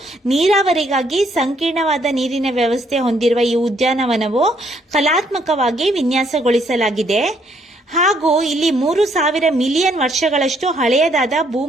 ನೀರಾವರಿಗಾಗಿ ಸಂಕೀರ್ಣವಾದ ನೀರಿನ ವ್ಯವಸ್ಥೆ ಹೊಂದಿರುವ ಈ ಉದ್ಯಾನವನವು ಕಲಾತ್ಮಕವಾಗಿ ವಿನ್ಯಾಸಗೊಳಿಸಲಾಗಿದೆ. ಹಾಗೂ ಇಲ್ಲಿ 3000 ಮಿಲಿಯನ್ ವರ್ಷಗಳಷ್ಟು ಹಳೆಯದಾದ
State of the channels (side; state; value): both; normal; correlation 0.69